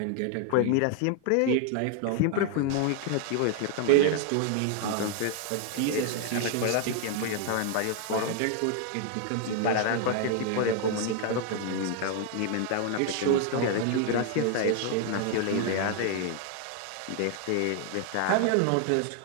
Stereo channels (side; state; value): both; different; correlation 0.00